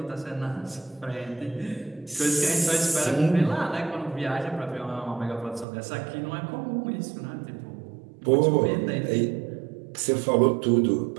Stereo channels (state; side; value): drops out; left; at 5.7 s